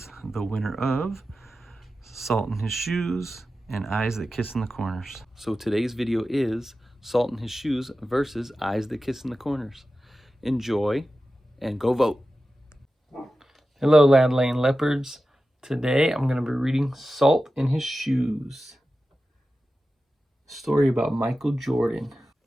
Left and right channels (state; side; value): normal; both; correlation 0.93